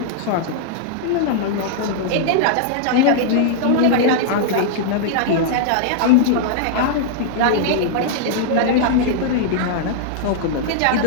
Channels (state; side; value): different; both; correlation -0.01